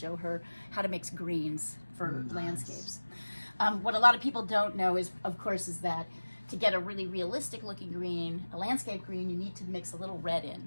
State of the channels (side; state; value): both; inverted; correlation -1.00